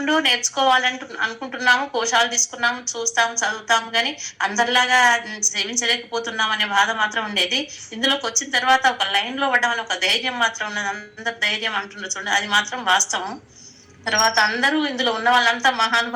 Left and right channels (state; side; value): identical; both; correlation 1.00